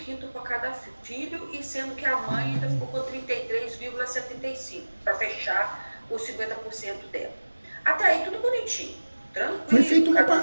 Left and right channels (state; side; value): inverted; both; correlation -1.00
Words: para cada filho, e sendo que a mãe ainda ficou com 33,75 para fechar os 50% dela. Até aí tudo bonitinho, tranquilo.